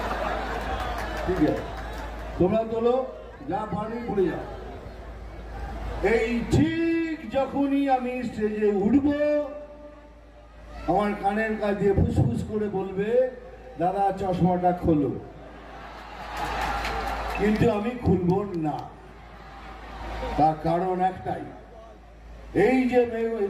ঠিক আছে, তোমরা তোলো, যা পারি ভুলে যাও। এই ঠিক যখনই আমি স্টেজে উঠবো, আমার কানের কাছে দিয়ে ফুসফুস করে বলবে, দাদা চশমাটা খোলো, কিন্তু আমি খুলব না। তার কারণ একটাই, এই যে মেয়ে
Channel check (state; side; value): identical; both; correlation 1.00